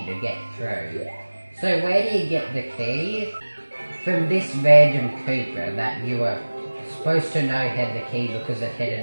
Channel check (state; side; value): inverted; both; correlation -1.00